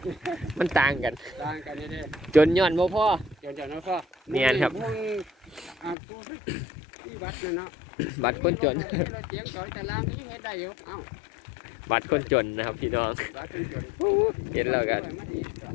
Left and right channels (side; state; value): right; drops out; at 6.0 s